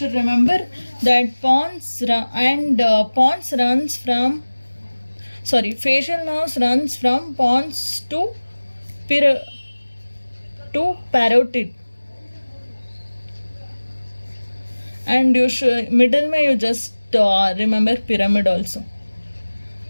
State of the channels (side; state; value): both; inverted; correlation -1.00